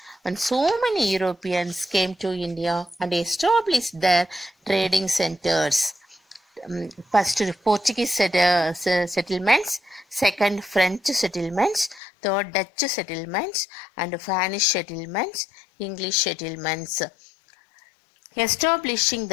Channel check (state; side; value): drops out; right; at 12.0 s